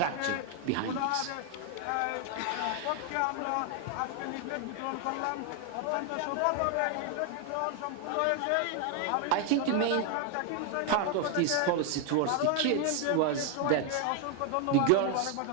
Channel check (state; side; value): different; both; correlation 0.01